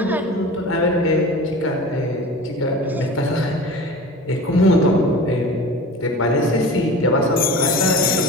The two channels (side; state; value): both; normal; correlation 0.35